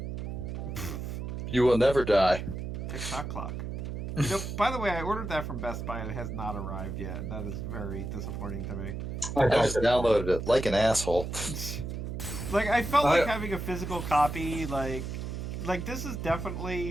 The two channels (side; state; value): right; noise; hum, 5 dB below the sound